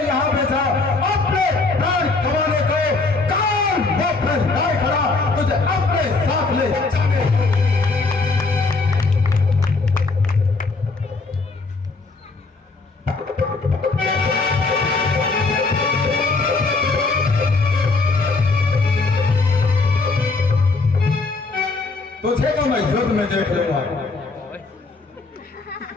यहाँ भेजा अपने प्राण कमाने को, कान मुंह फैलाए खड़ा तुझे अपने साथ ले जाने। तुझे तो मैं युद्ध में देख लूंगा।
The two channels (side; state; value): right; quieter; 3.8 dB